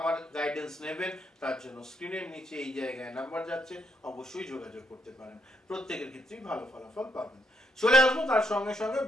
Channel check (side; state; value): both; normal; correlation 0.75